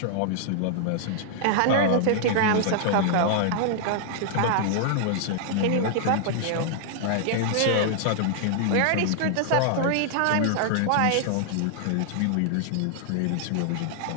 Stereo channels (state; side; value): different; both; correlation -0.01